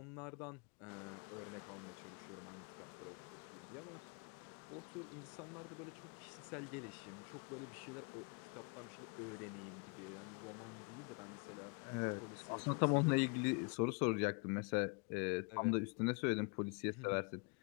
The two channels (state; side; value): quieter; right; 34.6 dB